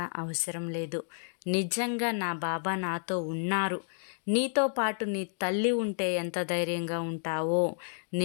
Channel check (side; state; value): right; silent; digital silence